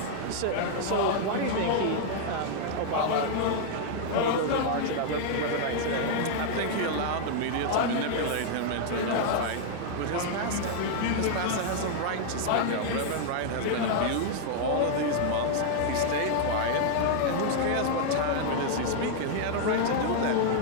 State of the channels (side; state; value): both; different; correlation 0.00